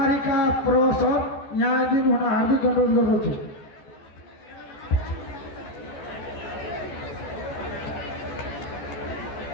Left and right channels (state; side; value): late; right; 14 ms